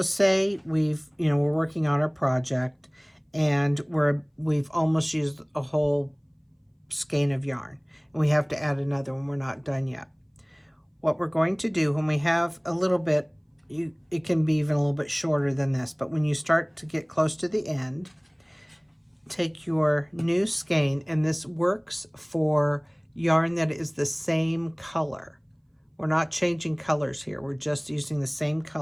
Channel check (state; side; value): identical; both; correlation 1.00